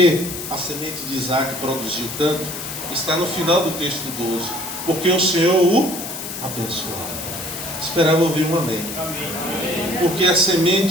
a semente de Isaac produziu tanto, está no final do texto 12. Porque o Senhor o abençoava. Esperava ouvir um amém. Porque a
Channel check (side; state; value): left; noise; hiss, 8 dB below the sound